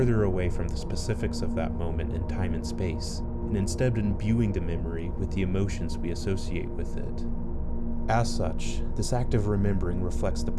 away from the specifics of that moment in time and space, and instead imbuing the memory with the emotions we associate with it. As such, this act of remembering reflects the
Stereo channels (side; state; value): both; identical; correlation 1.00